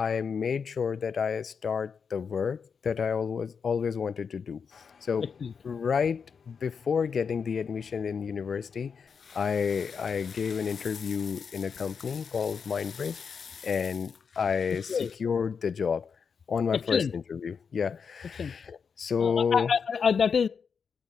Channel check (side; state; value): right; quieter; 6.1 dB